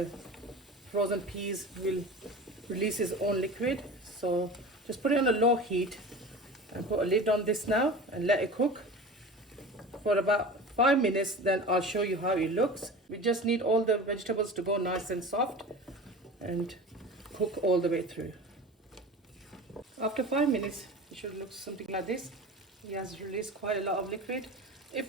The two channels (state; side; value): normal; both; correlation 0.34